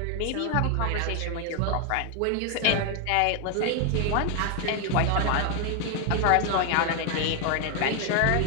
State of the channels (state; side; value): different; both; correlation 0.01